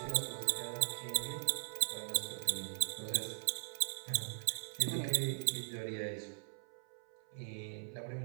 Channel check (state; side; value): silent; left; 51 dB below the other